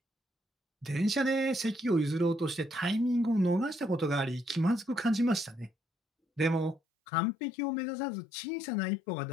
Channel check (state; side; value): drops out; right; at 6.8 s